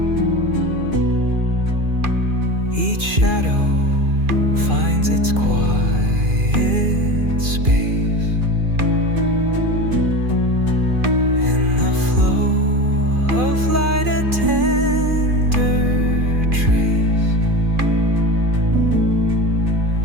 Each shadow finds its quiet space. In the flow of light, a tender trace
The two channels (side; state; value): left; late; 2.4 ms